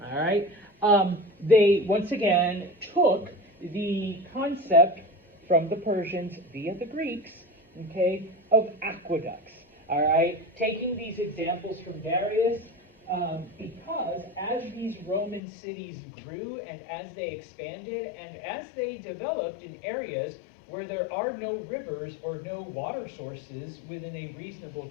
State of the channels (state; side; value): drops out; right; at 15.4 s